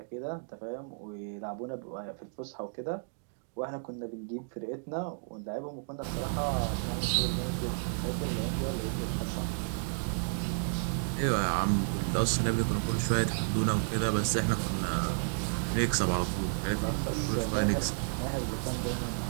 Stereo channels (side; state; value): left; silent; digital silence